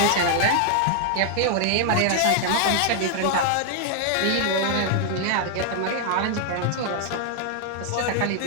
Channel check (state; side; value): different; both; correlation 0.00